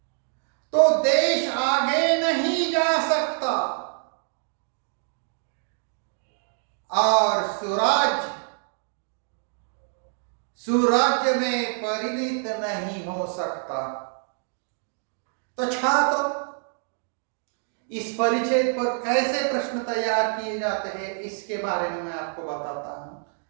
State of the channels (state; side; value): silent; left; 57 dB below the other